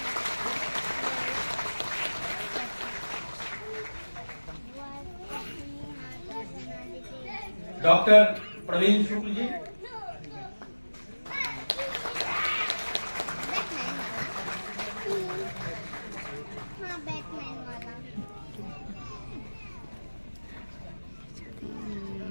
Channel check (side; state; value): both; inverted; correlation -1.00